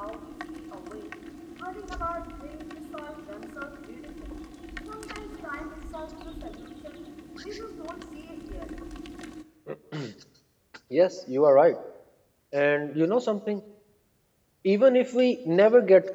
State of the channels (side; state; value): both; identical; correlation 1.00